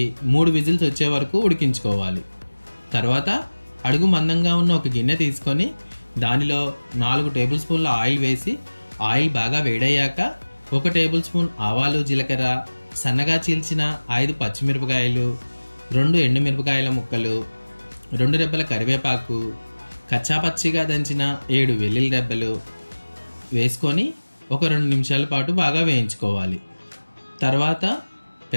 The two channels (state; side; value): inverted; both; correlation -1.00